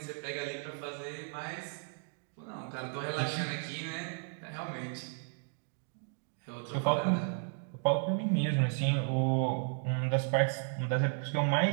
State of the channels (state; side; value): silent; left; 55 dB below the other